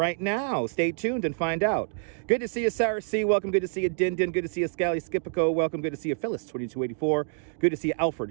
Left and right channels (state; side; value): silent; left; 60 dB below the other